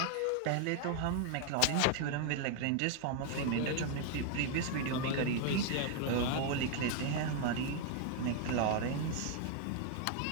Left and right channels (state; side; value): different; both; correlation 0.00